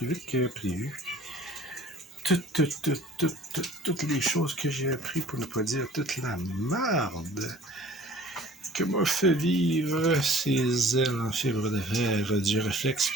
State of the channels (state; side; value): normal; both; correlation 0.49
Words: vite que prévu. Toutes les choses que j'ai appris, pour ne pas dire toute la merde que m'a fait vivre ces ailes en fibre de fer du réflexe